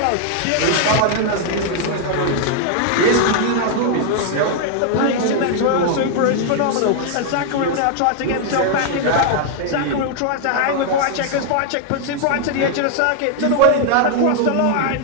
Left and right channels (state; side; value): different; both; correlation 0.00